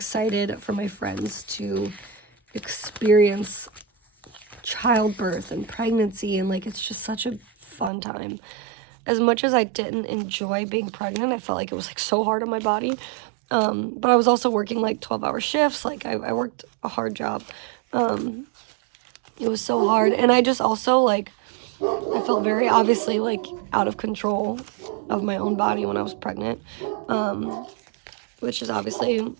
for my friends to experience childbirth and pregnancy, and like it's just such a fun time. As much as I didn't enjoy being pregnant, I felt like it was like so hard on my body. But I was also working like 12-hour shifts. Like I worked a hard job. It was so hard. And I just also like, I felt very obviously like out of control of my own body when I was pregnant. Which is obviously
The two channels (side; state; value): left; drops out; at 7.9 s